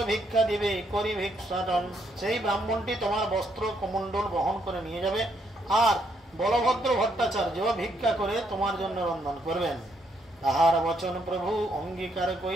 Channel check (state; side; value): normal; both; correlation 0.73